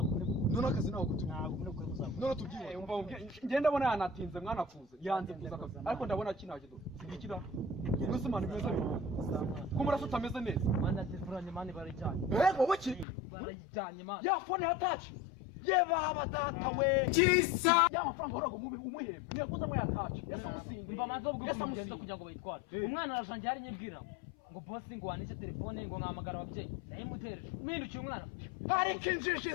none akazi naho kutu. Ntabwo muri kuri muzaba. None tubyiye umva ngenda ndabona yanatinze mwana kuza. Yanze kuza akazi. Ariko ndabona kinaje do. Sigikira. Ubwo mana bimeze neza. Ko murasa utameze neza. Mana telefoni mani barijyanye. Wowe ki? Barijyanye mana. Ya phone ya touch. Baba data we. Kisa. Ya mafaranga horago umuhembe. Niyakuza mu ya touch. Yesa musinga. Mba manzo bwo kugenda kugira ngo bayitware. Umwana arajanje ari nyibwira. Ngo boss ngo wanishe telefone ngo nkamagara ababyeyi. Nayimutereje. Mpindukiye umwana. Hari kinjiji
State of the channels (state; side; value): drops out; right; at 13.1 s